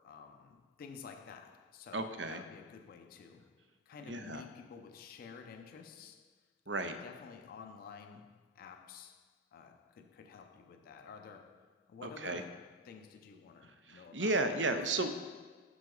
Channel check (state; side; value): normal; both; correlation 0.03